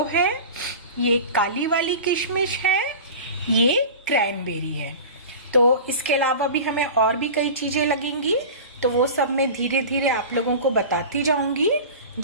है, ये काली वाली किशमिश है, ये क्रैनबेरी है। तो इसके अलावा भी हमें और भी कई चीज़ें लगेंगी, तो वो सब मैं धीरे धीरे आप लोगों को बताती जाऊंगी।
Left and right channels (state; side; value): inverted; both; correlation -0.34